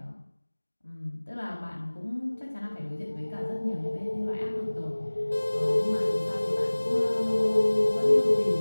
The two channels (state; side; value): inverted; both; correlation -1.00